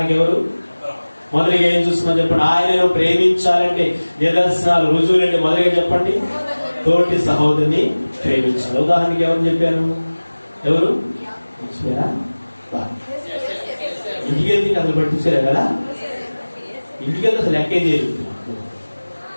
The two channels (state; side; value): inverted; both; correlation -1.00